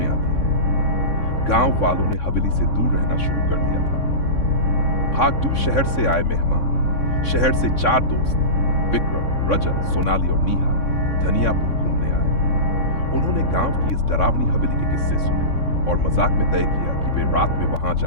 आती हैं। गांव वालों ने हवेली से दूर रहना शुरू कर दिया था। भागदू शहर से आए मेहमान, शहर से 4 दोस्त विक्रम, रजत, सोनाली और नीहा धनियापुर घूमने आए। उन्होंने गांव की इस डरावनी हवेली के किस्से सुने और मजाक में तय किया कि वे रात में वहां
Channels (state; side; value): late; right; 3.6 ms